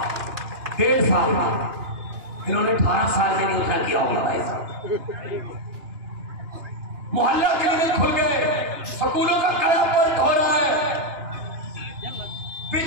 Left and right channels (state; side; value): late; left; 2.9 ms